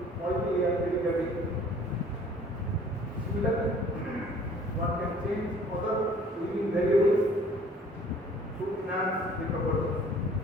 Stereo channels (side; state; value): both; normal; correlation 0.53